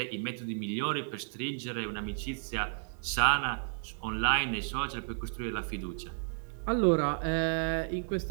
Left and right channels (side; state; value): left; silent; digital silence